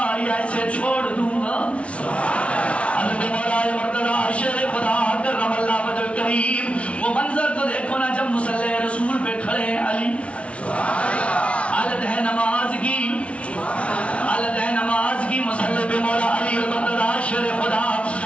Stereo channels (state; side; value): late; right; 0.062 ms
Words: یا اسے چھوڑ دوں گا۔ حضرت مولا مرتضی شیر خدا کرم اللہ وجہ الکریم، وہ منظر تو دیکھو نا جب مصلی رسول پہ کھڑے ہیں علی، حالت ہے نماز کی، حالت ہے نماز کی، مصلی پہ مولا علی المرتضی شیر خدا